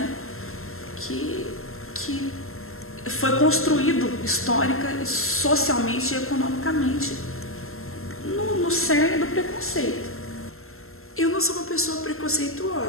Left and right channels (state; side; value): late; right; 0.62 ms